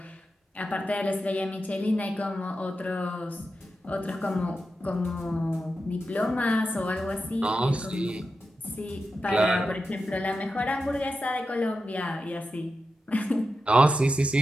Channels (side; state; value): both; normal; correlation 0.90